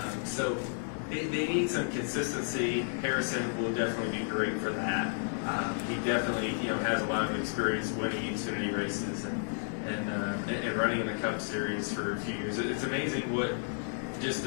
So they need some consistency. Harrison will definitely be great for that. He definitely has a lot of experience winning Xfinity races and running in the Cup Series for a few years. It's amazing what just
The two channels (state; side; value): silent; right; digital silence